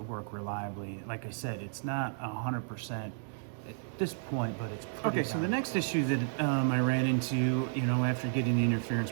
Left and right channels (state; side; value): silent; left; digital silence